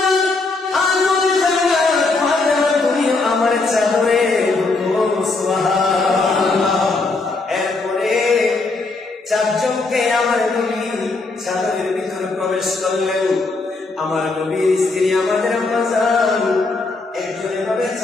আমার চাদরে ঢুকো। সুবহানাল্লাহ। এরপরে চারজনকে আমার নবী চাদরের ভিতরে প্রবেশ করলেন। আমার নবীর স্ত্রী আমাদের আম্মা জান একজন এভাবে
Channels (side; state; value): right; quieter; 3.6 dB